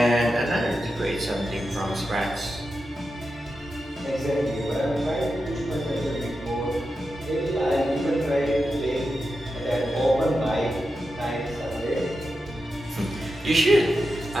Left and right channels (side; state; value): both; normal; correlation 0.89